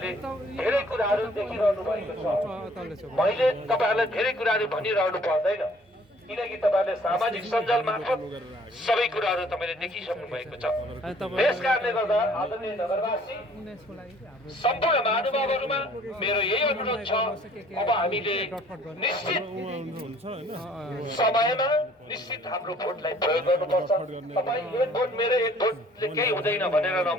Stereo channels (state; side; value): normal; both; correlation 0.56